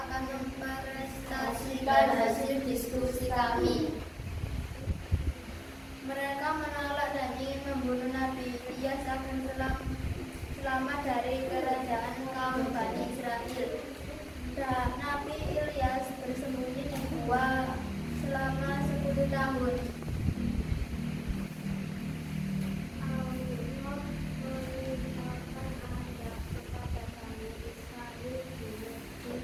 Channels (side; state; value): both; identical; correlation 1.00